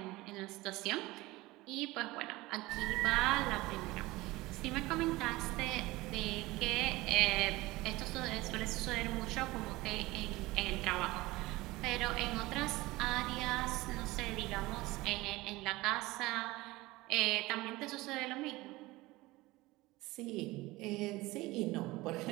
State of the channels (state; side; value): quieter; left; 20.0 dB